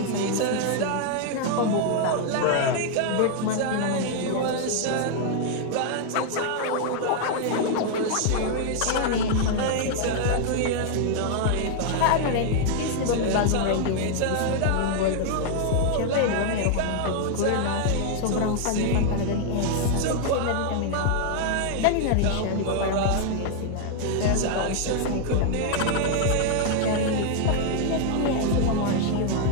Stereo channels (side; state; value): both; different; correlation 0.00